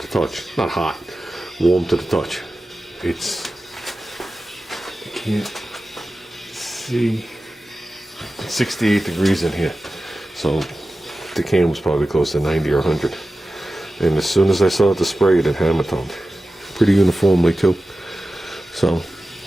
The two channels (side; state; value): both; normal; correlation 0.95